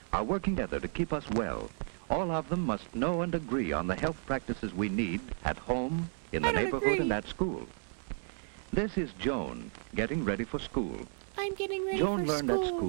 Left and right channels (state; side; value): silent; left; 56 dB below the other